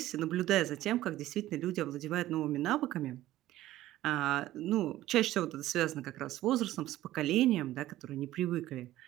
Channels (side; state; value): left; quieter; 14.9 dB